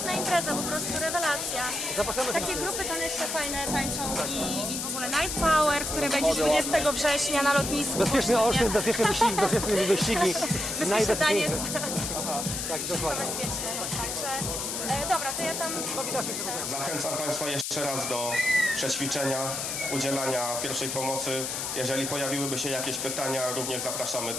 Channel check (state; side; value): noise; left; hiss, 3 dB below the sound